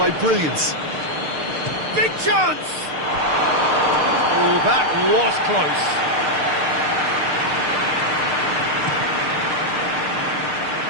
brilliance. Big chance! Oh, that was close.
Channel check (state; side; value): late; left; 6.6 ms